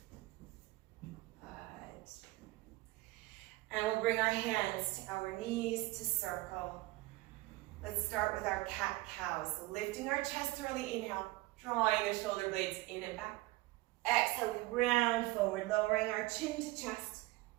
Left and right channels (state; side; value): quieter; left; 19.8 dB